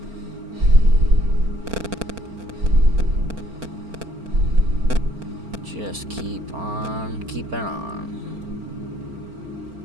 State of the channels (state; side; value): late; left; 4.4 ms